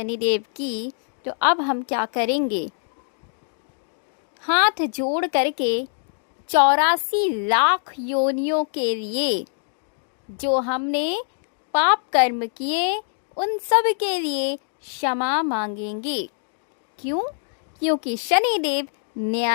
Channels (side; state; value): right; silent; digital silence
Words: की, तो अब हम क्या करेंगे। हाथ जोड़ करके 84 लाख योनियों के लिए जो हमने पाप कर्म किए उन सब के लिए क्षमा मांगेंगे। क्यों? क्योंकि शनिदेव